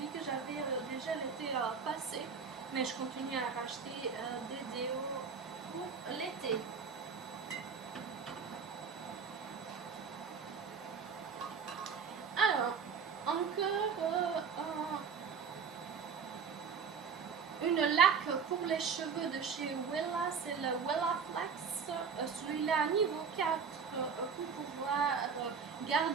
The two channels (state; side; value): quieter; left; 6.0 dB